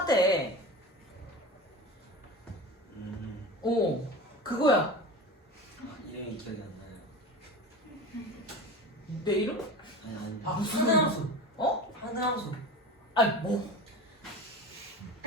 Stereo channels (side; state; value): both; normal; correlation 0.30